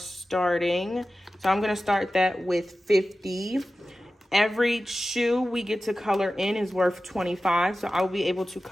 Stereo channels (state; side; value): normal; both; correlation 0.95